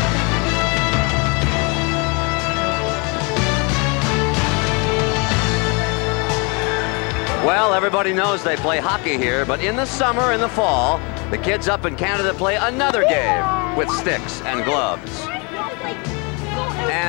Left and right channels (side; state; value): right; quieter; 31.8 dB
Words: Well, everybody knows they play hockey here, but in the summer and the fall, the kids up in Canada play another game with sticks and gloves.